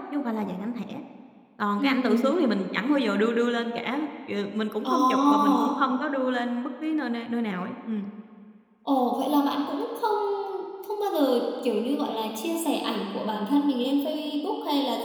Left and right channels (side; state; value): both; identical; correlation 1.00